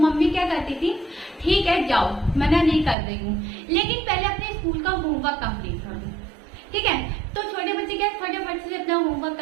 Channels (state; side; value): drops out; left; at 3.0 s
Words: क्या करती थी? ठीक है जाओ, मना नहीं कर रही हूँ, लेकिन पहले अपने स्कूल का होमवर्क कंप्लीट करो। ठीक है, तो छोटे बच्चे क्या फटाफट से अपना होमवर्क